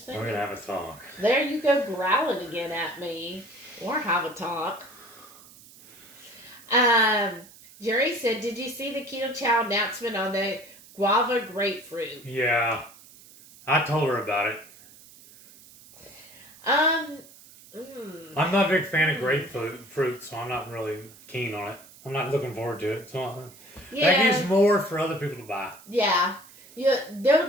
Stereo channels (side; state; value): right; noise; hiss, 22 dB below the sound